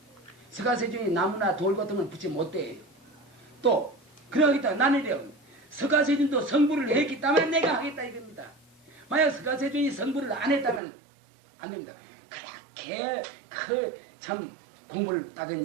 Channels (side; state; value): left; drops out; at 10.8 s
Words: 서가세주니 나무나 돌 같은 건 부처 못 돼요. 또 그러겠다. 나는 이래요. 서가세준도 성불을 했기 때문에 내가 하겠다 이겁니다. 만약 서가세준이 성불을 안 했다면 안 됩니다. 그렇게 참 공부를 따던